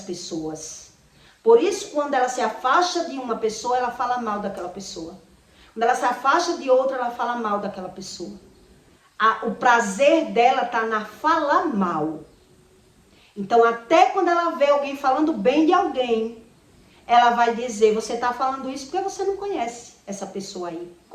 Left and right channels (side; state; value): both; identical; correlation 1.00